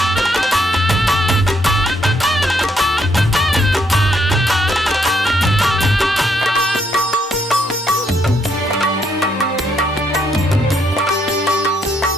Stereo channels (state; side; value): normal; both; correlation 0.73